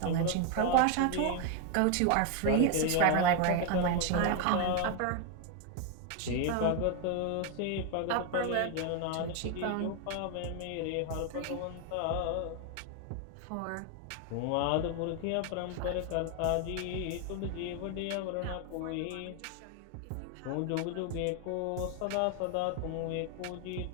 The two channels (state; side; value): different; both; correlation 0.01